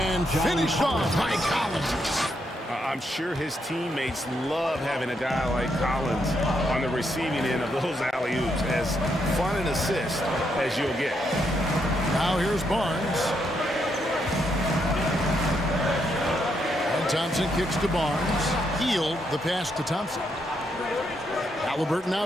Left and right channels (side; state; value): both; normal; correlation 0.78